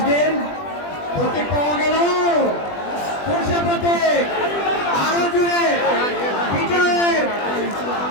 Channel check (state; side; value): late; right; 20 ms